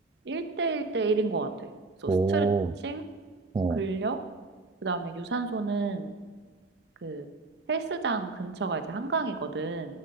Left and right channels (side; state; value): left; quieter; 3.5 dB